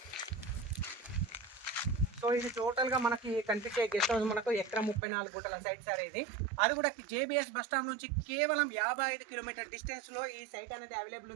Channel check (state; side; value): drops out; left; at 5.0 s